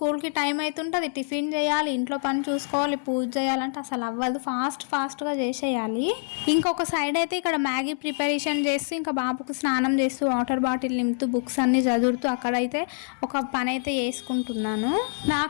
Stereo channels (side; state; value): right; silent; 61 dB below the other